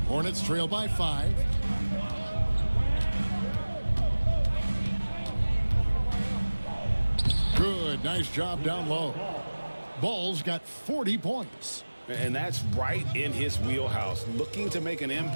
Hornets trail by 5. Good. Nice job down low. Ball's got 40 points. And that's right in his wheelhouse, looking to make an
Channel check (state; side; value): inverted; both; correlation -1.00